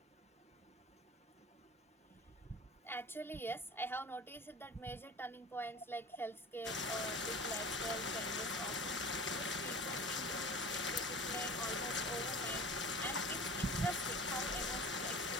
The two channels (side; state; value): both; normal; correlation 0.38